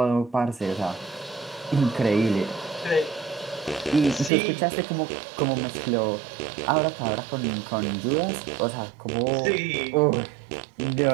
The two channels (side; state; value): left; drops out; at 4.3 s